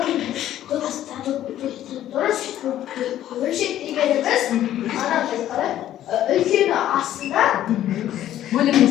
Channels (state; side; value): quieter; right; 12.4 dB